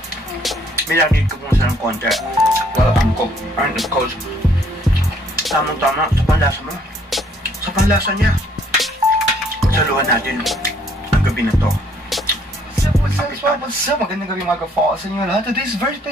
Minanid ko muna sa ng konti. Well, ang cook. And of course, tamang-tama sa panlasa mo. Sa panlasa niya. Pagsaluhan natin ang gabi na to. What's up? Magandang gabi mga ka-fall sa inyo lahat. Today's very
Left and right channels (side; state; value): both; normal; correlation 0.64